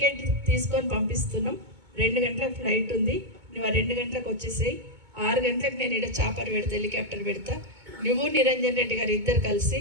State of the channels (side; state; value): left; late; 2.2 ms